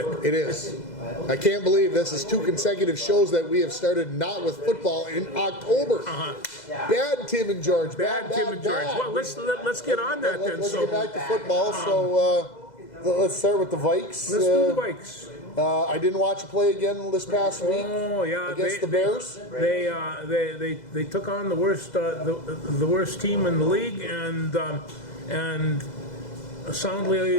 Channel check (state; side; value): late; right; 2.0 ms